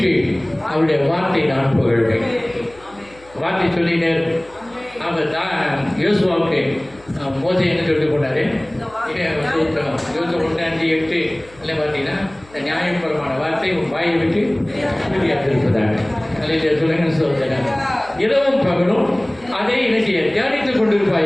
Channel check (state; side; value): noise; left; hum, 26 dB below the sound